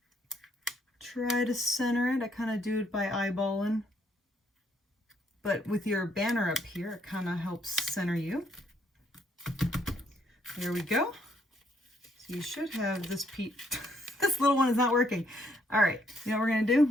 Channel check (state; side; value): normal; both; correlation 0.69